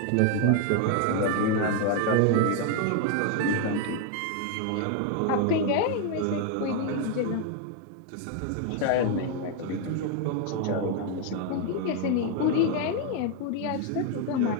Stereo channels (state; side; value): different; both; correlation 0.00